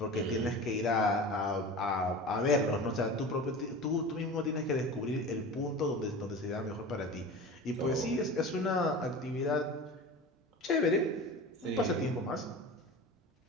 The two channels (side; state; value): both; normal; correlation 0.33